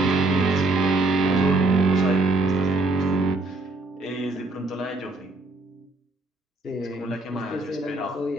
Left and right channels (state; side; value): quieter; left; 3.1 dB